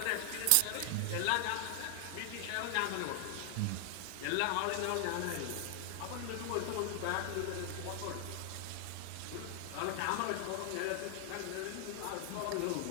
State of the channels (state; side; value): different; both; correlation 0.00